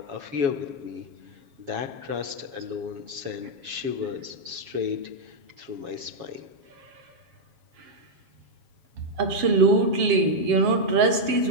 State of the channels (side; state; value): left; late; 7.3 ms